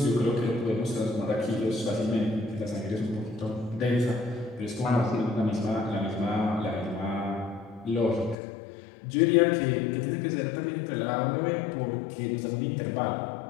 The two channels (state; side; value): drops out; right; at 8.3 s